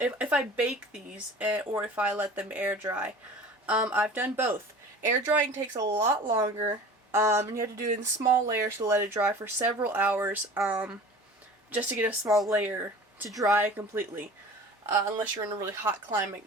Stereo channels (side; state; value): both; normal; correlation 0.41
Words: if I bake these, or if I let them air dry. I've done both. Air drying takes a lot longer. And you have to do it in small layers to let it dry for several hours, just to get a small layer to dry completely. Unless you're in a really hot climate,